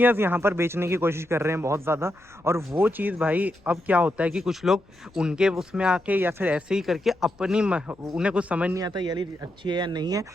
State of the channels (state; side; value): noise; left; rumble, 29 dB below the sound